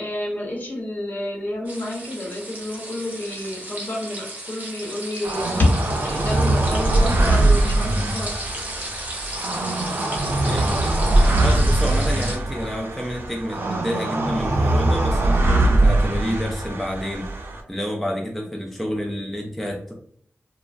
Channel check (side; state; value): both; normal; correlation 0.87